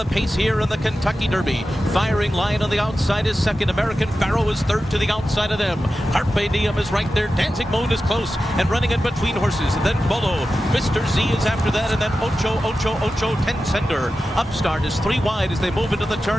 pace here in the Kentucky Derby. Firing Line on the outside is second. American Pharoah is third to the outside of them. Carpe Diem is right there. Dancing Moon is close and running in between horses. And then Bolo. Mr. Z is after that, and then Ocho, Ten-Sender. Upstart is 3 wide as they move into the turn.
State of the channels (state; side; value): normal; both; correlation 0.93